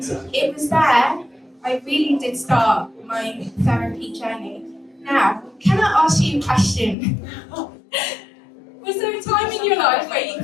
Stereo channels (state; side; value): drops out; right; at 7.0 s